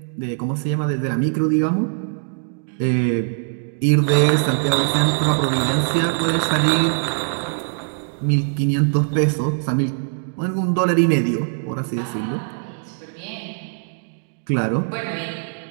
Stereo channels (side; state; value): left; silent; digital silence